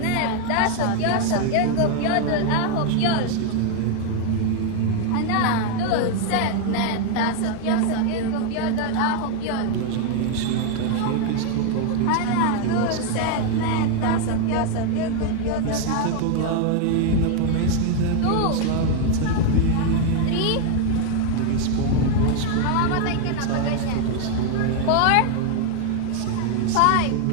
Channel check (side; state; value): both; different; correlation 0.01